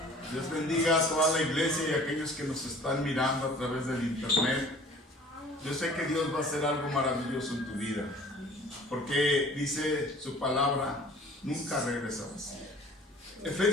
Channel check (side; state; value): both; normal; correlation 0.49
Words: Dios bendiga a toda la iglesia y a aquellos que nos están mirando a través del internet. Yo sé que Dios va a hacer algo maravilloso en tu vida, porque dice su palabra, nunca regresarás.